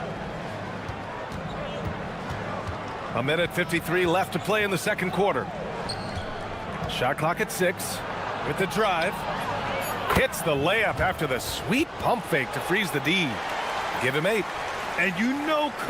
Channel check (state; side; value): identical; both; correlation 1.00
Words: A minute 53 left to play in the second quarter. Shot clock at 6. With the drive. Hits the layup after the sweet pump fake to freeze the D. Give him 8. And you know